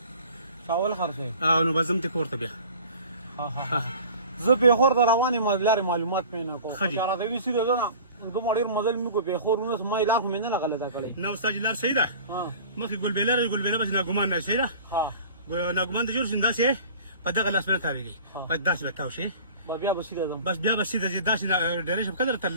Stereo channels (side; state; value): both; inverted; correlation -0.43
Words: چاول خرڅوې؟ نو به ځم ته کور ته بیا. زه پېښور ته روان یم، لارې معلومات مې نه کول. ښه دي. راته وایي سیده ځه نه، دومره ډېر مزل مې وکړو پېښور ونیس، ما یې لار خو مې نه غلطه کړې. نه استاد لار صحیح ده. مخکې ګلبېله ده، ګلبېله بس ناګمان نه صحیح ده. ناګمان ته جوړ شي داسې په دغه لاس باندې تاوېږي، بس داسې به تاو شي. بیا به سیده ځم. بس بیا به سیده ځې، داسې ډېرې شم قدر